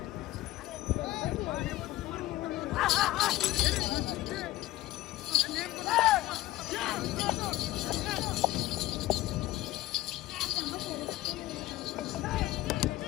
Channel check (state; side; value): quieter; right; 16.2 dB